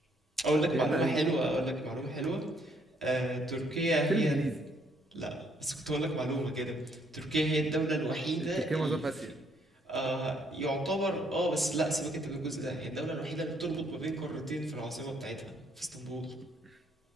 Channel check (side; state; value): both; normal; correlation 0.69